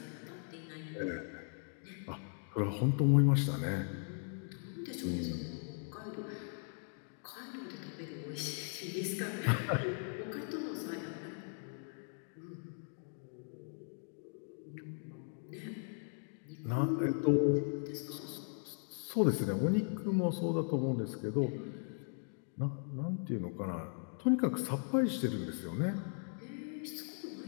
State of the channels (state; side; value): silent; right; 52 dB below the other